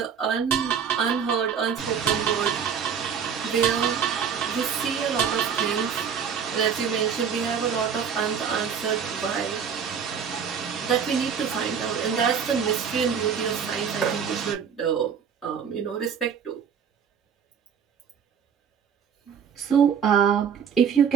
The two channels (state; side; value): quieter; left; 7.2 dB